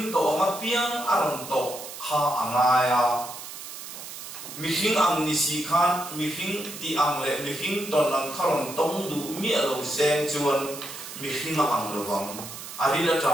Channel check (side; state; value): right; noise; hiss, 11 dB below the sound